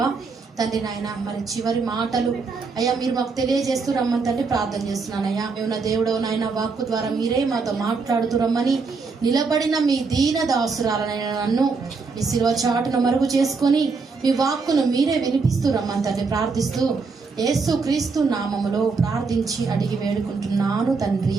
తండ్రి నాయన మరి చివరి మాటలు అయ్యా మీరు మాకు తెలియజేస్తూ రమ్మని తండ్రి ప్రార్థన చేస్తున్నానయ్యా. మేము నా దేవుడు నాయన వాక్కు ద్వారా మీరే మాతో మాట్లాడుతూ రమ్మని నిలబడిన మీ దీన దాసురాలనైనా నన్ను మీ శిలువ చాటును మరుగు చేసుకొని మీ వాక్కును మీరే వినిపిస్తూ రమ్మని తండ్రి ప్రార్థిస్తూ యేసు క్రీస్తు నామములో ప్రార్థించి అడిగి వేడుకుంటున్నాను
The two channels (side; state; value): left; quieter; 4.6 dB